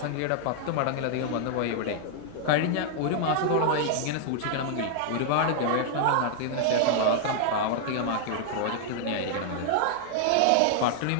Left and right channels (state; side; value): different; both; correlation -0.01